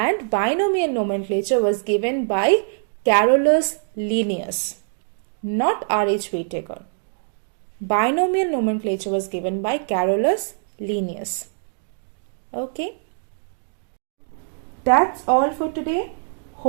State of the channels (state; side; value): silent; left; digital silence